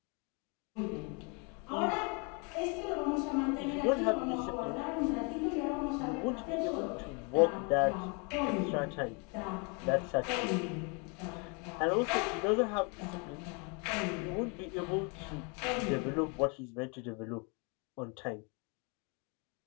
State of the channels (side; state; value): right; quieter; 33.5 dB